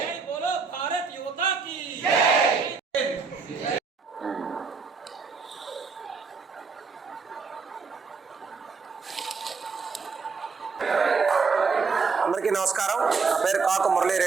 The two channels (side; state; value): left; quieter; 5.0 dB